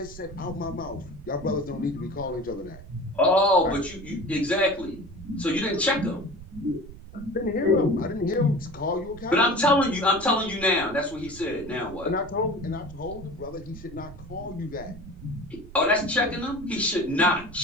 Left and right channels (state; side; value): noise; right; rumble, 16 dB below the sound